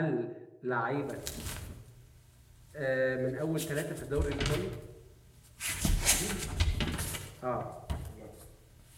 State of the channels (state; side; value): identical; both; correlation 1.00